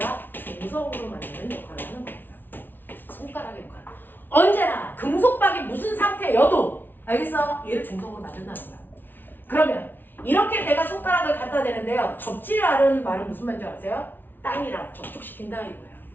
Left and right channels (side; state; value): right; late; 0.094 ms